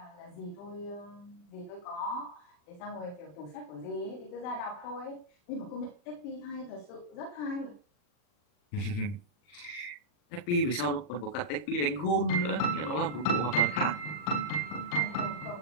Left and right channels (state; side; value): late; right; 40 ms